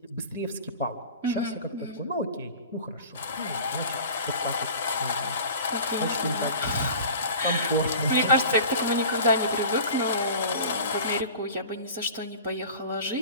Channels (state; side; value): inverted; both; correlation -0.39